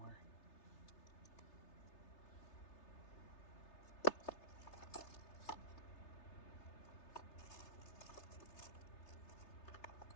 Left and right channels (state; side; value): late; right; 3.3 ms